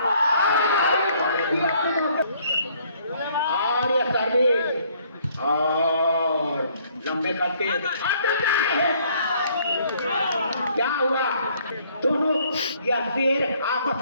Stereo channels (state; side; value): inverted; both; correlation -0.63